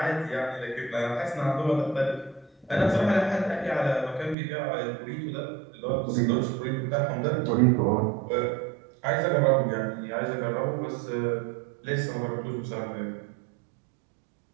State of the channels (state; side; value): drops out; left; at 4.4 s